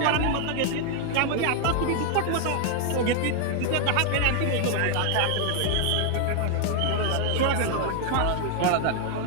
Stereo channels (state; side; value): different; both; correlation 0.00